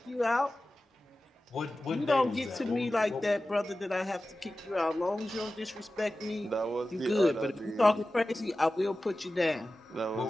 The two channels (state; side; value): normal; both; correlation 0.95